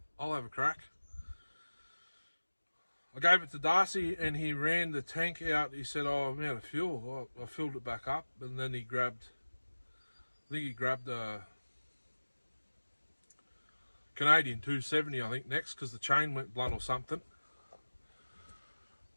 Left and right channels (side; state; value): both; inverted; correlation -1.00